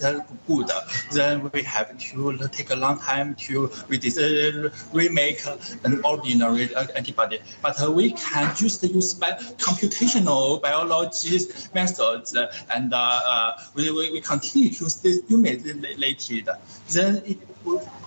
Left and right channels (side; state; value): both; inverted; correlation -1.00